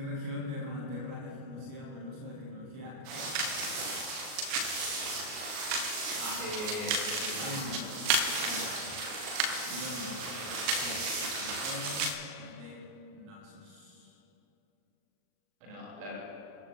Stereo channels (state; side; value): late; left; 38 ms